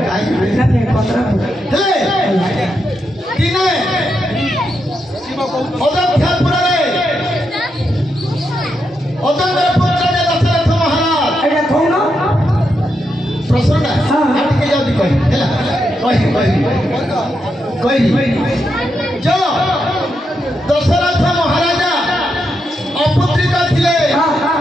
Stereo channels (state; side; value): normal; both; correlation 0.83